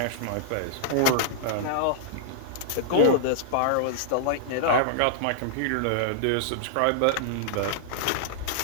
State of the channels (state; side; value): different; both; correlation -0.01